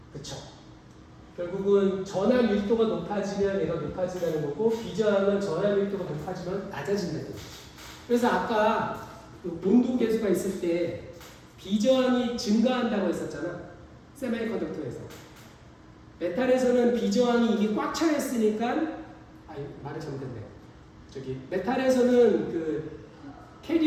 그쵸. 결국은 전압 밀도가 높아지면 얘가 높아진다는 거고 비저항은 전압 밀도가 높아지면 낮아진다는 거죠. 그래서 아까 그 온도 계수가 있을 때 비저항이 증가한다고 했었잖아. 세미컨덕터에서. 메탈에서는 비저항이 이게 꽉 차 있으니까 말이 잘못됐네. 메탈에서는 그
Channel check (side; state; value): both; identical; correlation 1.00